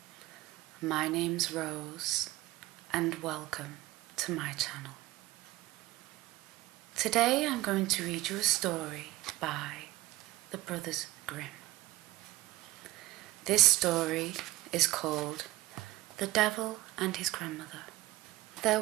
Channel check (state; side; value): quieter; left; 18.1 dB